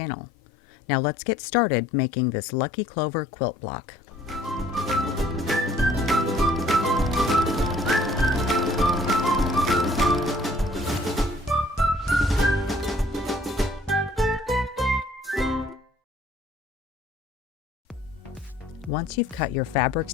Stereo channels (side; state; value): both; normal; correlation 0.58